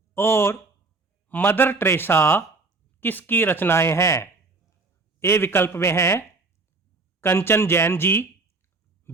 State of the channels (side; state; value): left; quieter; 3.8 dB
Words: और मदर टेरेसा किसकी रचनाएं हैं? ए विकल्प में है कंचन जैन जी,